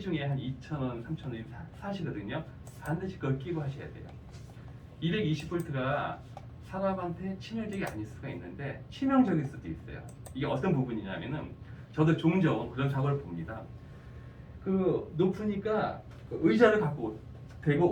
한 2,000원, 3,000원 사시거든요. 반드시 그걸 끼고 하셔야 돼요. 220V가 사람한테 치명적이 아닐 수가 있는데 치명적일 수도 있어요. 이게 어떤 부분이냐면은 저도 종종 그런 사고를 봅니다. 높으니까 의자를 갖고 대고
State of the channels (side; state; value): both; identical; correlation 1.00